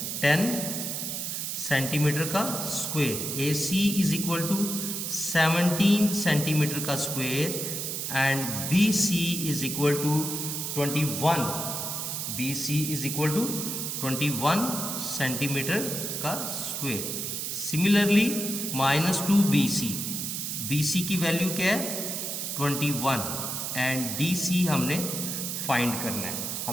10 centimetre का square, AC is equal to 17 centimetre का square and BC is equal to 21, BC is equal to 21 centimetre का square. Similarly minus 2 BC की value क्या है 21 and DC हमने find करना है।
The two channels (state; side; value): noise; right; hiss, 3 dB below the sound